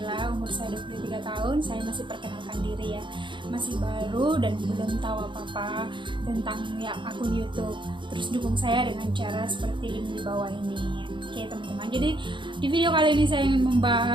umur saya 23 tahun. Saya masih perkenalkan diri ya, masih baru dan belum tahu apa-apa tentang ya akun YouTube. Terus dukung saya dengan cara seperti link di bawah ini. Oke teman-teman, jadi di video kali ini saya ingin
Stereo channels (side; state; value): left; late; 0.23 ms